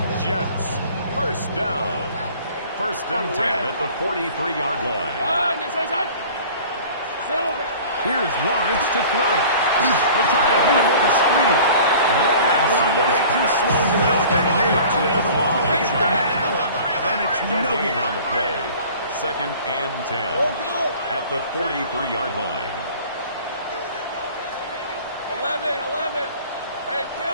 Jets 1st down. 1st and 10 at the 43-yard line. Here's Lawrence to throw. They're trying to hit him with a screen. That one way too slow to help. They rally to the ball, they get the man, and it's no gain good. on the play. 2nd and 10 at the 43-yard line. 11. Hey,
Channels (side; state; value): both; inverted; correlation -0.45